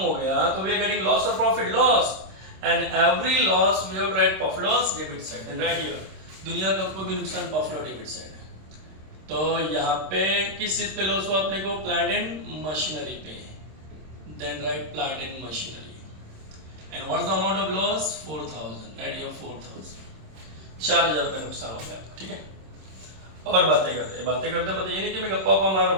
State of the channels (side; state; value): left; late; 26 ms